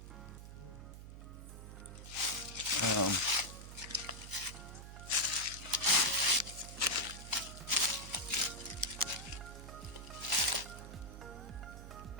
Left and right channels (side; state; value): right; noise; hum, 12 dB below the sound